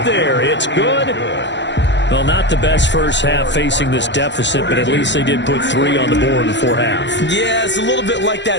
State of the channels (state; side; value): late; right; 0.52 ms